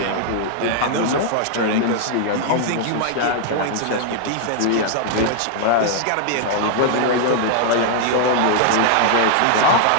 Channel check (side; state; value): both; different; correlation 0.00